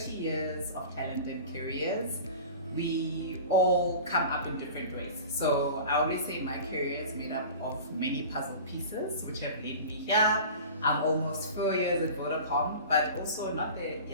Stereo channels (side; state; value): both; inverted; correlation -0.38